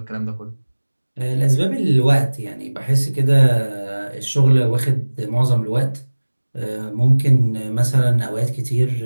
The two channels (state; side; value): inverted; both; correlation -1.00